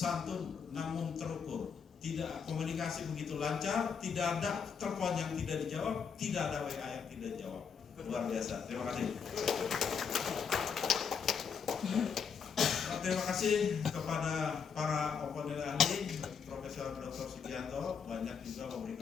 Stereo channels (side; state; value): right; quieter; 6.5 dB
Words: namun terukur. Tidak komunikasi begitu lancar, tidak ada telepon yang tidak dijawab, tidak ada WA yang tidak dijawab. Luar biasa. Terima kasih. Terima kasih kepada para komponen ahli, Profesor Dr. Sugianto banyak juga